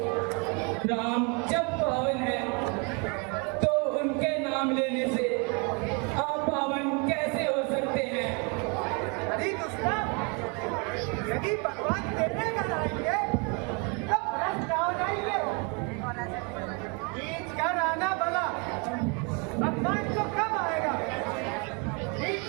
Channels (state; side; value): quieter; left; 33.0 dB